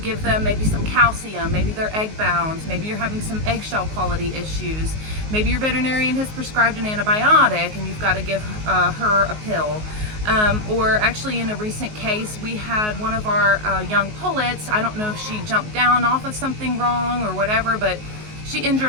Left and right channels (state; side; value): late; left; 19 ms